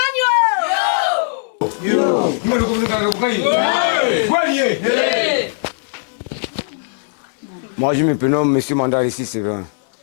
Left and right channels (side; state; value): right; silent; digital silence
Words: Moi, je me prénomme M. Mandar ici, c'est vrai.